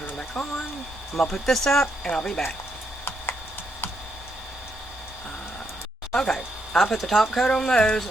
it back on. I'm going to put this up and I'll be back. Okay, I put the top coat on those,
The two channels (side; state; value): both; normal; correlation 0.77